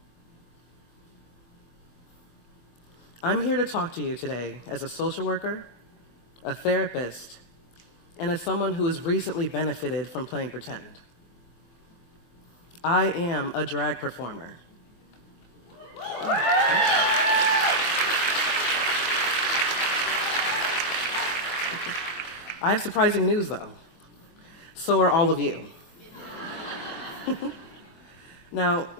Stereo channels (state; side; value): late; right; 23 ms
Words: I'm here to talk to you today as a social worker, a therapist, and as someone who has recently benefited from playing pretend. I am a drag performer. I have surprising news, though. So are all of you. Now,